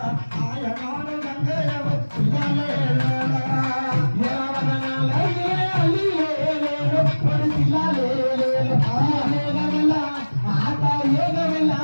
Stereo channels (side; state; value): both; inverted; correlation -1.00